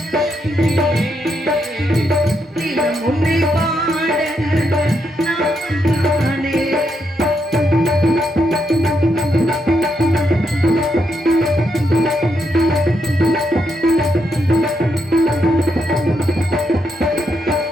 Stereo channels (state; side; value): normal; both; correlation 0.80